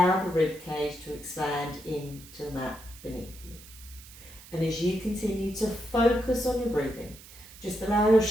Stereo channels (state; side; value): noise; right; hiss, 19 dB below the sound